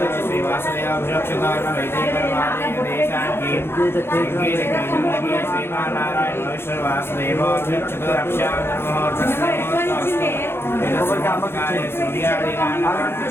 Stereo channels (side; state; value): right; late; 0.11 ms